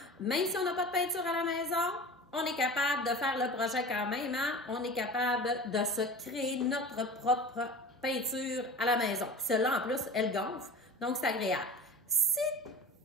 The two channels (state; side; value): normal; both; correlation 0.35